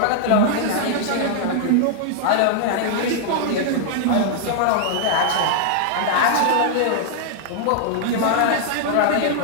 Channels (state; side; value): different; both; correlation -0.01